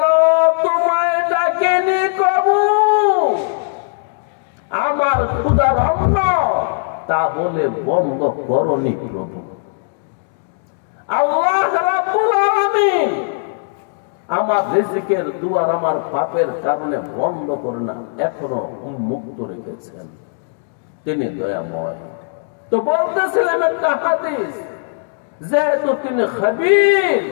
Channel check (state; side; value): silent; right; digital silence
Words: তোমায় ডাকেনি কবু, আমার ক্ষুধার অন্ন তাহলে বন্ধ করনি প্রভু। আল্লাহ রাব্বুল আলামিন আমার রিজিকের দুয়ার আমার পাপের কারণে বন্ধ করে না, এখনো উন্মুক্ত রেখেছেন, তিনি দয়াময়। তো বলতেছিলেন একটা হাদিস, যেহেতু তিনি খবীর,